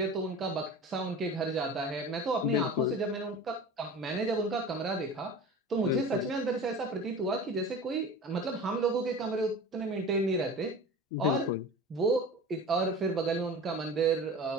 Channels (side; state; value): both; normal; correlation 0.36